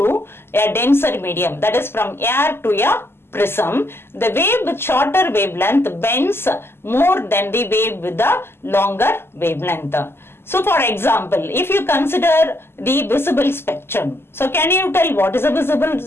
a denser medium, that is from air to a prism, the wave with shorter wavelength bends more than the wave with the longer wavelength. So for example, if you consider the visible spectrum, so can you tell what is a visible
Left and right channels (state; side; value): late; right; 0.12 ms